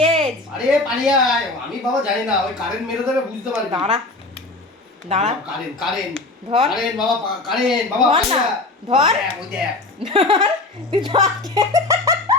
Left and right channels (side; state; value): right; quieter; 3.1 dB